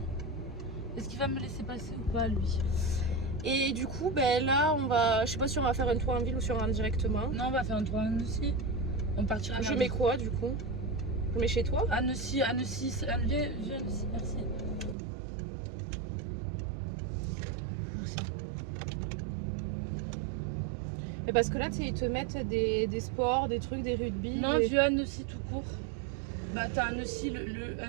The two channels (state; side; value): drops out; left; at 15.0 s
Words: est-ce qu'il va me laisser passer ou pas, lui? Et du coup, là, on va... Je sais pas si on va faire un tour en ville ou si on rentre directement. Non, on va faire un tour en Annecy. On partira. Je mets quoi, du coup? Je mets chez toi? Annecy, viens Annecy, merci. Et parce que là, tu sais, ils te mettent des sports, des trucs, des rugby. Non, vieux Annecy tout court. Bah t'as Annecy,